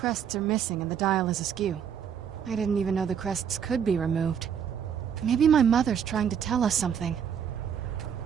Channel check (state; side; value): quieter; left; 8.1 dB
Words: are missing and the dial is askew. I didn't even know the crests could be removed. Maybe my mother's trying to tell us something.